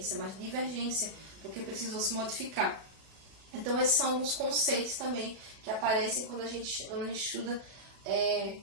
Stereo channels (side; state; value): left; late; 36 ms